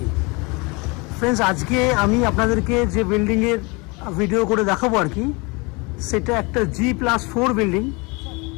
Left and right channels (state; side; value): quieter; right; 27.7 dB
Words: Friends आज के आमी आपनादेरके जे बिल्डिंगेर भिडियो करे देखाबो आर कि सेटा एकटा G+4 बिल्डिंग।